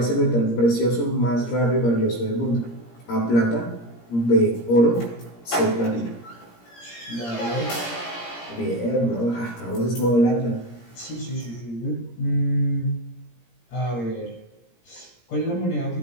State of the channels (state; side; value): late; right; 17 ms